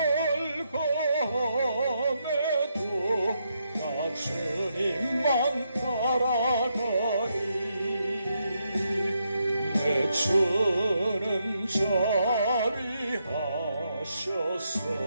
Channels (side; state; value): both; inverted; correlation -0.80